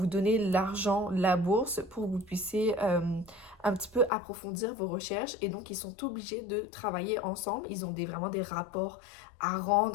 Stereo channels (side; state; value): right; drops out; at 4.1 s